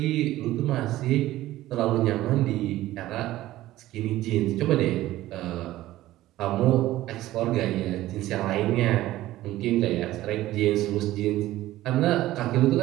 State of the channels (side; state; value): left; quieter; 15.6 dB